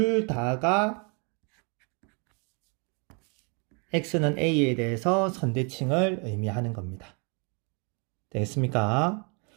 다가 x는 a에 대해서 선대칭을 의미하는 겁니다. 되겠습니까?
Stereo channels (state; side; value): quieter; left; 34.9 dB